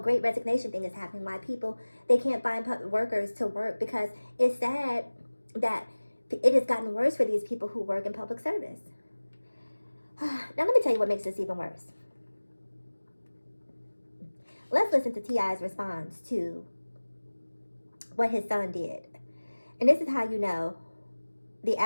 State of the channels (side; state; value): both; inverted; correlation -1.00